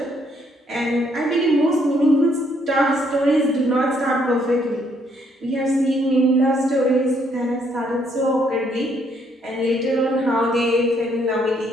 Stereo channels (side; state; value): both; normal; correlation 0.70